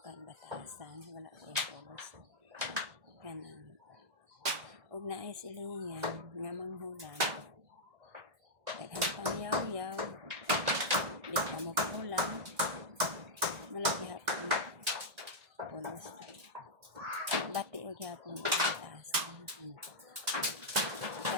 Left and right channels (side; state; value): left; late; 1.6 ms